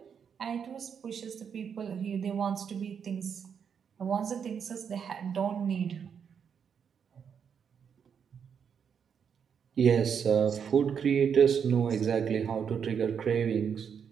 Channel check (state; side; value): quieter; left; 7.3 dB